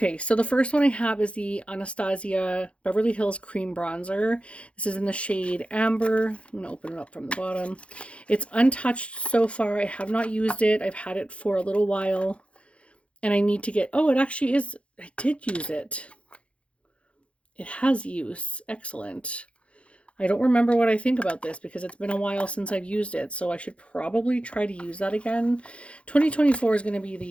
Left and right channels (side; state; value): right; late; 0.061 ms